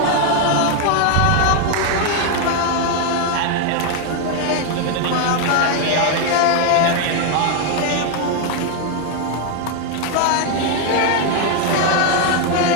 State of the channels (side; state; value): both; different; correlation 0.01